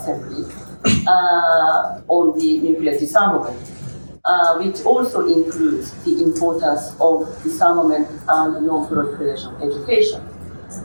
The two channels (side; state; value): both; inverted; correlation -1.00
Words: on the nuclear disarmament, which also includes the importance of disarmament and non-proliferation education.